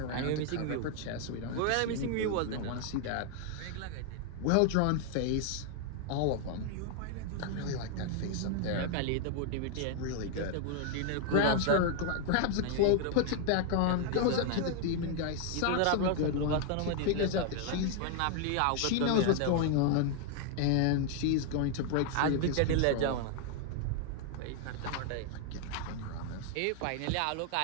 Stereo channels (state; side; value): different; both; correlation 0.00